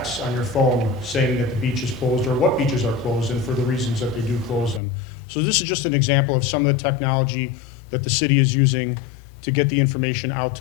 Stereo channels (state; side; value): drops out; right; at 4.8 s